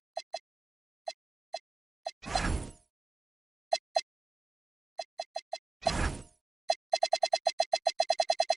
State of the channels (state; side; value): quieter; left; 3.5 dB